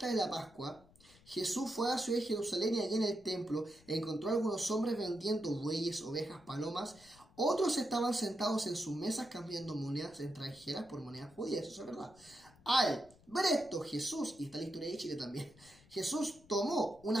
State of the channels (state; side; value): noise; left; rumble, 26 dB below the sound